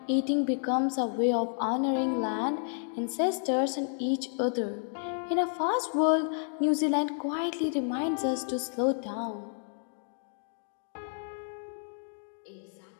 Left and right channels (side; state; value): right; silent; digital silence